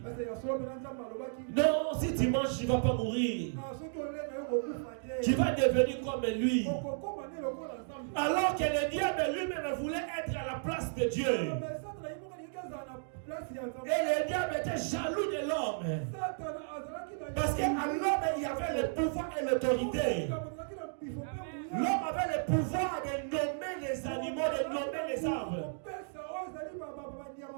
Non, si tu manges, tu ne vas pas mourir. Tu vas devenir comme lui. Alors que le diable lui-même voulait être à la place de Dieu. Et le diable était jaloux de l'homme. Parce qu'à l'homme, il y avait le pouvoir et l'autorité. L'homme avait le pouvoir de nommer les animaux, de nommer les arbres.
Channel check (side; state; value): left; silent; digital silence